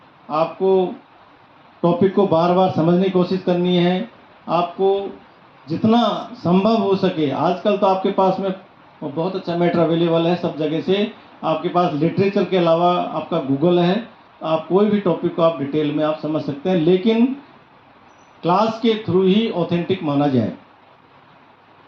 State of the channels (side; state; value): both; identical; correlation 1.00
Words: आपको टॉपिक को बार बार समझने की कोशिश करनी है, आपको जितना संभव हो सके। आजकल तो आपके पास में बहुत अच्छा मैटर अवेलेबल है सब जगह से, आपके पास लिटरेचर के अलावा आपका गूगल है, आप कोई भी टॉपिक को आप डिटेल में आप समझ सकते हैं, लेकिन क्लास के थ्रू ही ऑथेंटिक माना जाए,